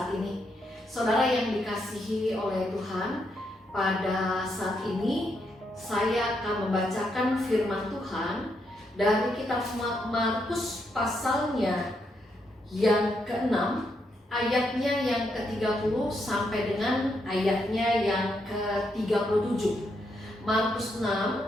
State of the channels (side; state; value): both; normal; correlation 0.79